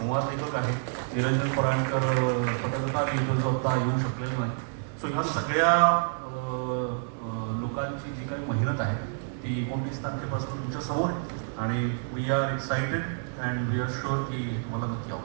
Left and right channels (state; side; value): silent; left; digital silence